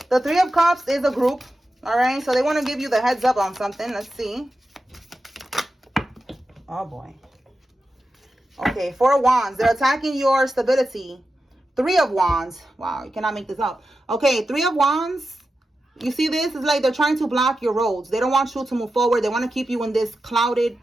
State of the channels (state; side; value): normal; both; correlation 0.91